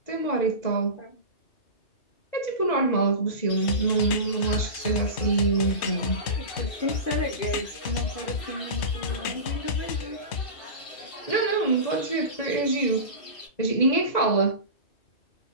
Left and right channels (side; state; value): right; late; 2.0 ms